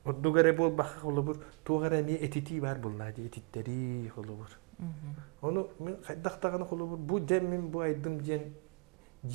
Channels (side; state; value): left; quieter; 31.1 dB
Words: O dugare bol bak olur. Tuğara niye etiti var bunlar, etitleri olur. Onu men kaytaktagan olur. Bu demin bu aydım diyen